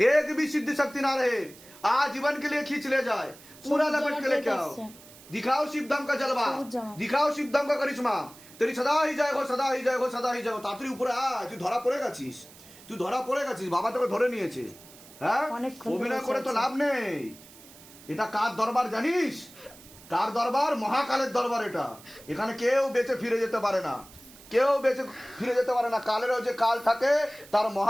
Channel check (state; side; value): noise; right; hiss, 21 dB below the sound